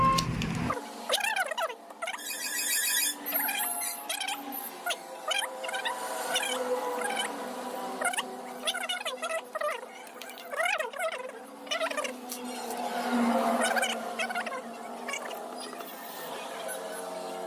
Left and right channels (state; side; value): identical; both; correlation 1.00